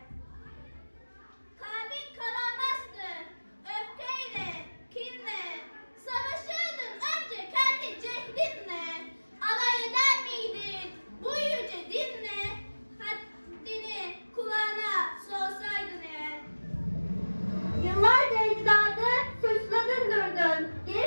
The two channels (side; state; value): both; inverted; correlation -1.00